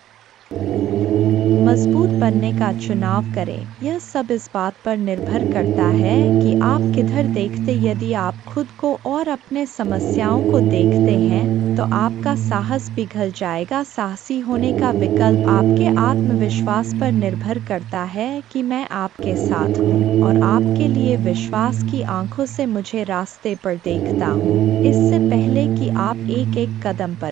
मजबूत बनने का चुनाव करें। यह सब इस बात पर निर्भर करता है कि आप किधर देखते। यदि आप खुद को और अपने समस्याओं को देखते हैं तो आपका साहस पिघल जाएगा। साहसी होने का विकल्प आपके आत्मविश्वास पर निर्भर करता है कि मैं आपके साथ हूँ और आपके लिए विश्वास की आंखों से मुझे रास्ते पर देखता हूँ। इससे पहले कि आप एक एक कदम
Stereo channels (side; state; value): left; quieter; 12.7 dB